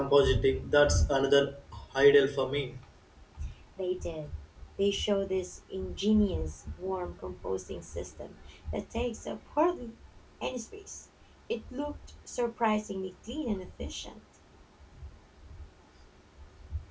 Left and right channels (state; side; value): identical; both; correlation 1.00